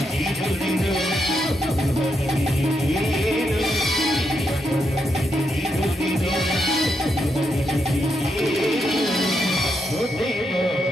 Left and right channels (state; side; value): normal; both; correlation 0.81